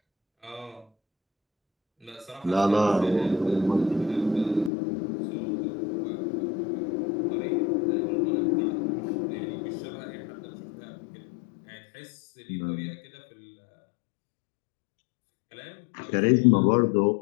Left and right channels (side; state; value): right; drops out; at 4.7 s